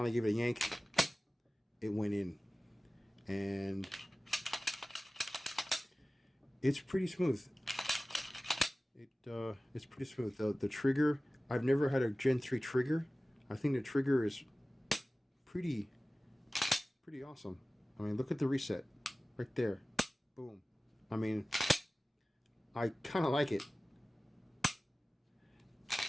gave it a yank, it went in. And it's pretty smooth. It's pretty smooth. The trigger, I've never had a Gen 3 trigger. I think the trigger is pretty awesome. I mean, look at the reset right there. Boom. I mean, I kind of like it.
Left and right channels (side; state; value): both; normal; correlation 0.97